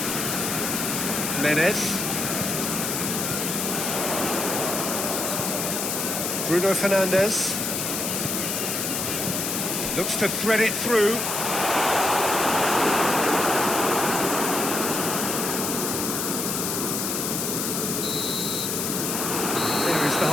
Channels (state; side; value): noise; left; hiss, 1 dB below the sound